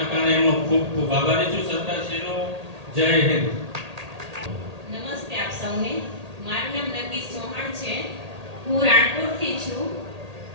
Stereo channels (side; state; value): left; late; 1.8 ms